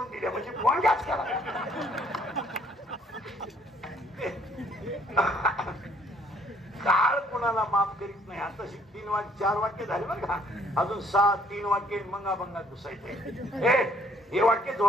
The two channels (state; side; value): normal; both; correlation 0.63